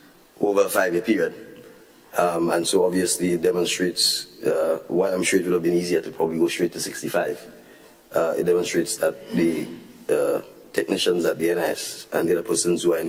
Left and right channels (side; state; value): both; identical; correlation 1.00